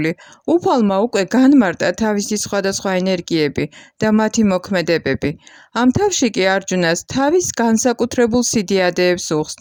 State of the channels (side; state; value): both; identical; correlation 1.00